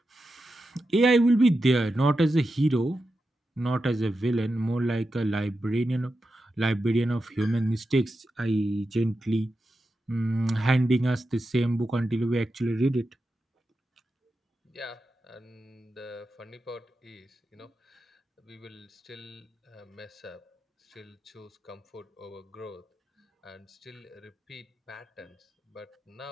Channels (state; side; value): normal; both; correlation 0.90